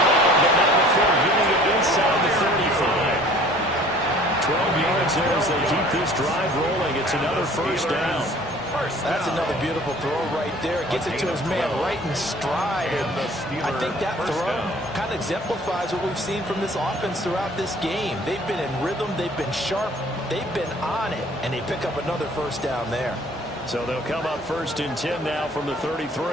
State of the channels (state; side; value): normal; both; correlation 0.51